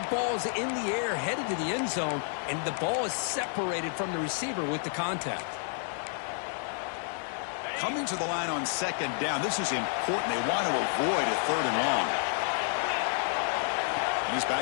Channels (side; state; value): right; silent; 58 dB below the other